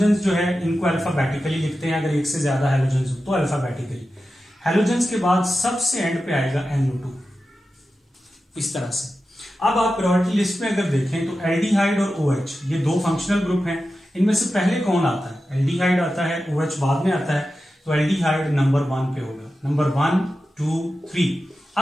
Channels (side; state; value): both; normal; correlation 0.92